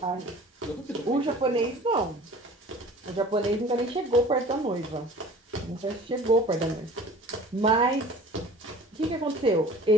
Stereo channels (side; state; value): both; normal; correlation 0.45